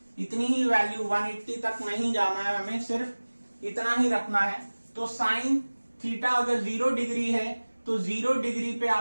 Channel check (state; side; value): inverted; both; correlation -1.00